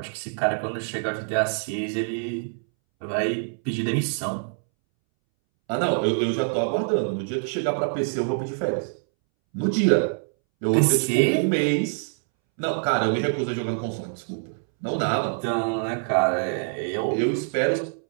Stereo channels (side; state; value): left; silent; 62 dB below the other